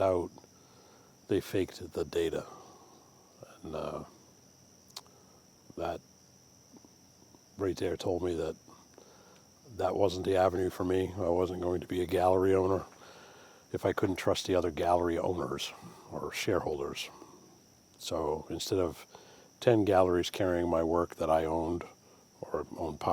out they faked the data. And that right there told me that that wasn't the avenue for me. I wasn't going to be a gallery owner if I couldn't trust the other gallery owners or shareholders. So instead of 10 galleries carrying my work that I owned or owned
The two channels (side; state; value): both; identical; correlation 1.00